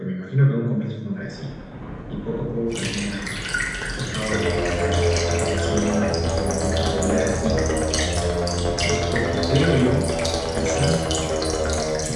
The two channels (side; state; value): both; identical; correlation 1.00